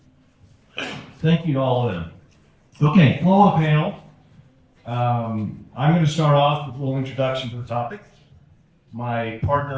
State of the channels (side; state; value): both; identical; correlation 1.00